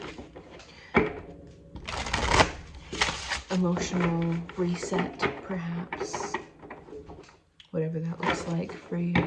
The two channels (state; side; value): identical; both; correlation 1.00